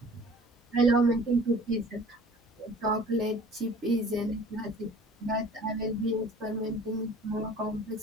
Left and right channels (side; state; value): both; normal; correlation 0.48